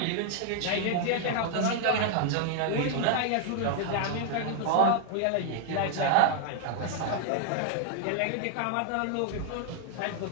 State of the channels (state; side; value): different; both; correlation 0.00